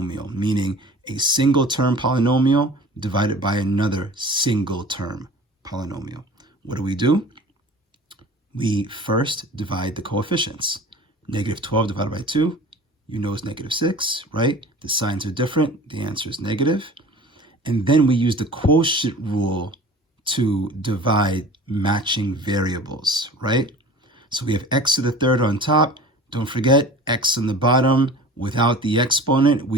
meaning a single term polynomial divided by another single term polynomial. What do? We first divide the coefficients. Negative 12 divided by 2, you know, is negative 6, right? The signs are different. The answer is negative. And then we use the quotient rule to divide matching variables, right? So we have x to the third on top. Don't forget, x on the bottom without the exponent,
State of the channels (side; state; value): both; normal; correlation 0.41